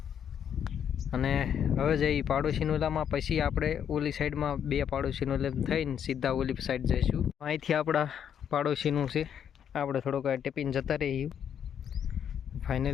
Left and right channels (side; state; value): right; quieter; 8.7 dB